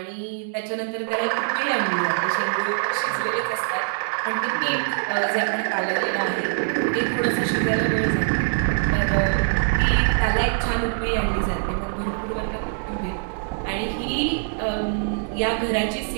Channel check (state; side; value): silent; left; digital silence